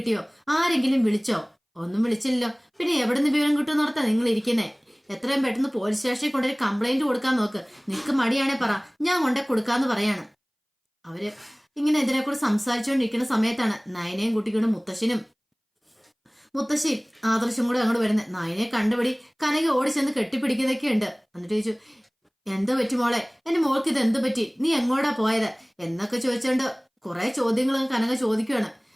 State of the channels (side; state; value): both; identical; correlation 1.00